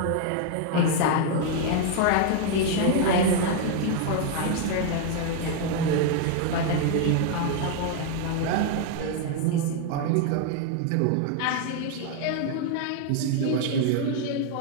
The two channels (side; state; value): both; different; correlation 0.00